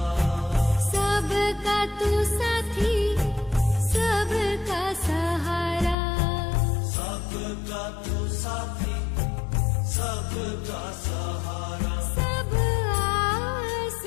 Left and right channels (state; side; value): drops out; right; at 6.0 s